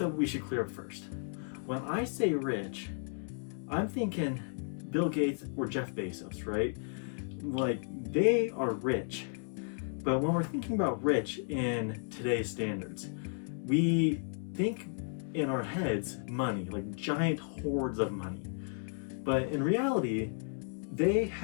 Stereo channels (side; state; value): right; silent; 55 dB below the other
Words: that we should clear up first. When I say rich, I'm thinking Bill Gates or Jeff Bezos, right? Like, they are rich. But when we're thinking about rich in today's standards, we think in our heads money, like giant hordes of money. But in reality, they